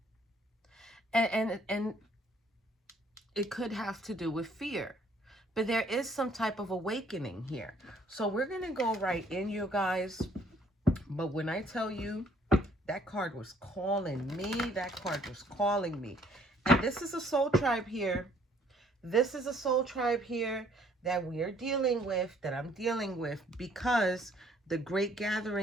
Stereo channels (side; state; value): both; normal; correlation 0.62